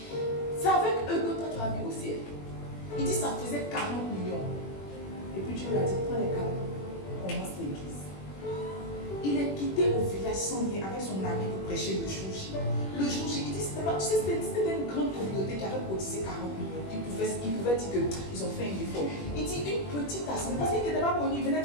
C'est avec eux que toi tu as vu au ciel. Il dit, ça faisait 40 millions. Et puis Dieu lui a dit, prends les 40, commence l'église. Il est quitté au village sans rien avec son ami pour prêcher le jour J. Le jour J, il dit, c'était une grande communauté qui avait cotisé 40 millions. Il pouvait dire qu'ils ont fait un effort. Il dit, une petite assemblée, parce qu'il n'était pas connu, il venait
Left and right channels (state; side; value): late; right; 21 ms